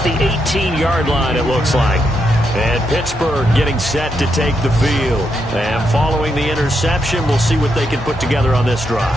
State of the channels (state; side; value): normal; both; correlation 0.81